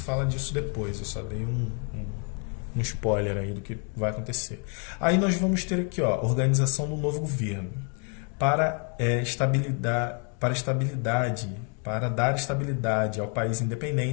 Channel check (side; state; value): right; quieter; 39.7 dB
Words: disso depois. Eu só dei um spoiler aí do que vai acontecer. Aí nós vamos ter aqui, ó, organização do novo governo para dar estabilidade ao país